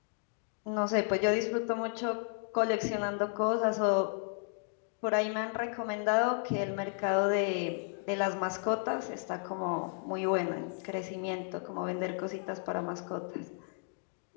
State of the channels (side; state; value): right; silent; 55 dB below the other